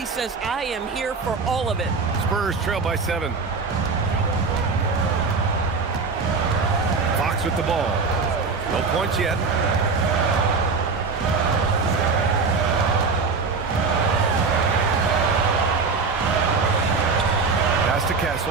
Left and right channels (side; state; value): left; quieter; 4.6 dB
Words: says, I am here for all of it. Spurs trail by 7. Fox with the ball. No points yet. Pass to